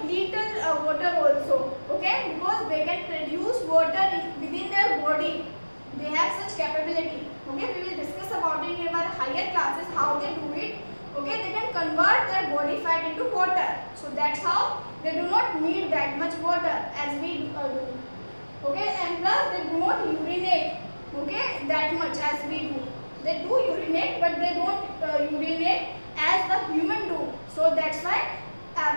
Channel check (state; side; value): inverted; both; correlation -1.00